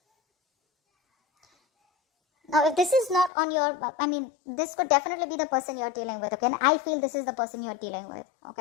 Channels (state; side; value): drops out; right; at 3.3 s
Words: Now, if this is not on your, this could definitely be the person you're dealing with, okay? And I feel this is the person you're dealing with,